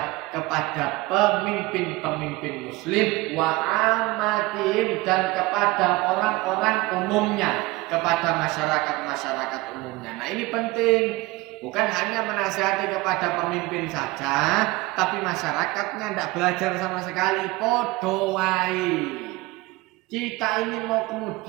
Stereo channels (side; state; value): left; quieter; 21.3 dB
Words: kepada pemimpin-pemimpin muslim, wa amatihim, dan kepada orang-orang umumnya, kepada masyarakat umumnya. Nah ini penting. Bukan hanya menasihati kepada pemimpin saja, tapi masyarakatnya tidak belajar sama sekali. Podo wae. Kita ini mau